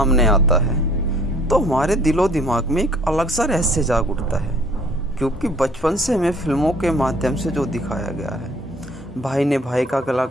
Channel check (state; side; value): normal; both; correlation 0.56